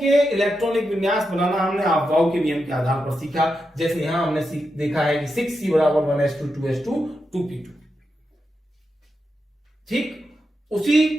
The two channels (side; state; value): both; normal; correlation 0.87